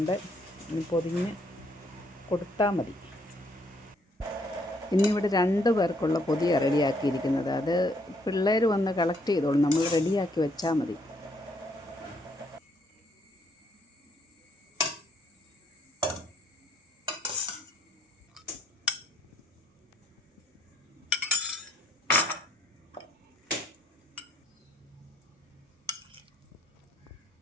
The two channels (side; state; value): both; normal; correlation 0.69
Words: ഇനി പൊതിഞ്ഞ് കൊടുത്താൽ മതി. ഇന്നിവിടെ 2 പേർക്കുള്ള പൊതിയാണ് റെഡിയാക്കിയിരിക്കുന്നത്. അത് പിള്ളേർ വന്ന് കളക്ട് ചെയ്തോളും, നമ്മൾ റെഡിയാക്കി വെച്ചാൽ മതി.